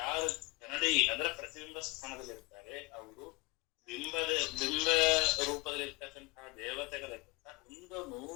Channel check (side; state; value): right; quieter; 24.3 dB